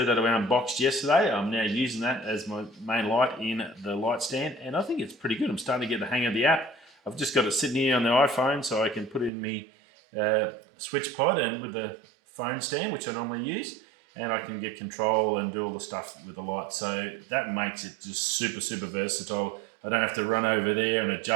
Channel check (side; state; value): left; drops out; at 9.3 s